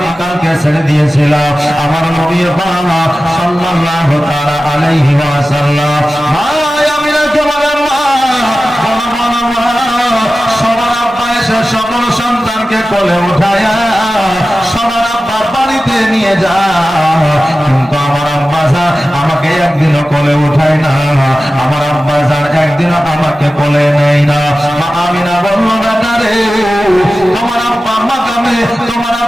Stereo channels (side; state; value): both; normal; correlation 0.95